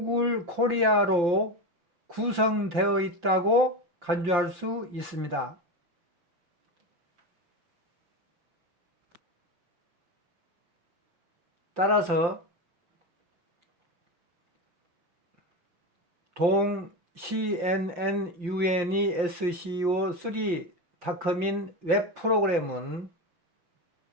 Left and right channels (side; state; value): left; late; 5.8 ms